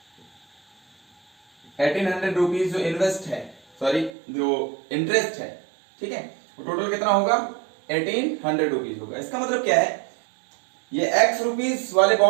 1800 रुपीज जो इन्वेस्ट है, सॉरी जो इंटरेस्ट है, ठीक है, वो टोटल कितना होगा, 1800 रुपीज होगा। इसका मतलब क्या है, ये x रुपीज वाले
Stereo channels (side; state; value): left; drops out; at 4.1 s